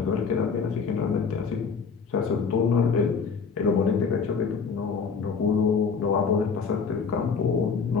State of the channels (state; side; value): quieter; right; 5.6 dB